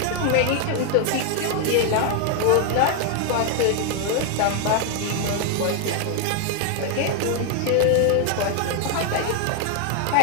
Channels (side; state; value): both; different; correlation 0.00